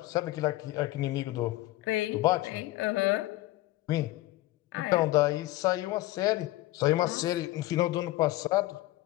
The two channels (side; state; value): right; quieter; 17.8 dB